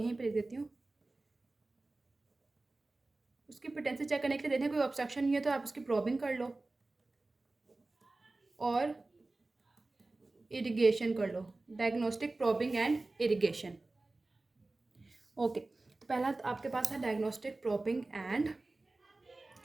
पर लिख देती हूँ, उसकी पोटेंसी चेक करने के लिए देखें कोई ऑब्स्ट्रक्शन नहीं है तो आप उसकी प्रॉबिंग कर लो और इरिगेशन कर लो, diagnostic probing and irrigation. Okay, तो पहला तो आपके पास है diagnostic probing and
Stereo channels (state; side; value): quieter; left; 3.1 dB